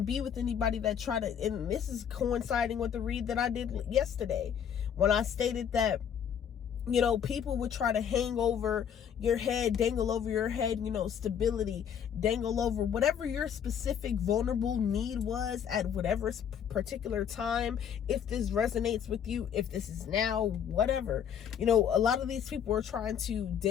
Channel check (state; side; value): quieter; right; 8.4 dB